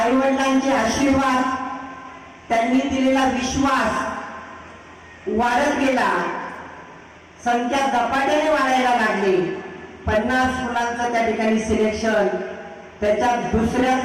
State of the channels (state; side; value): identical; both; correlation 1.00